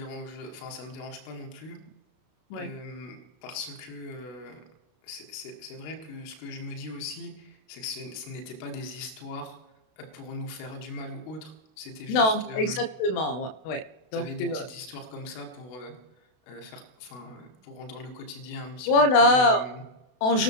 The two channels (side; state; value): right; late; 32 ms